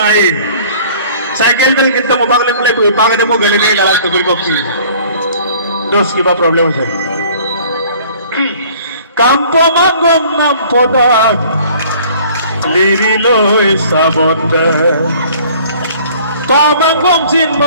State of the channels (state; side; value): inverted; both; correlation -0.52